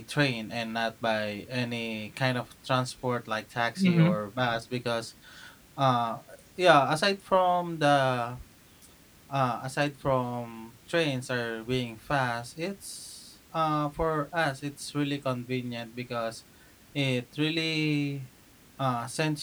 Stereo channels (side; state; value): both; identical; correlation 1.00